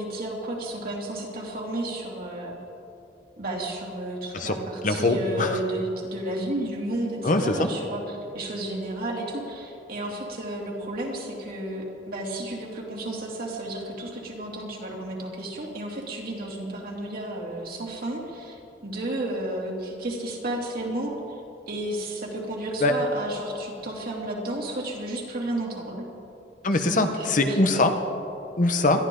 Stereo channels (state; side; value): normal; both; correlation 0.38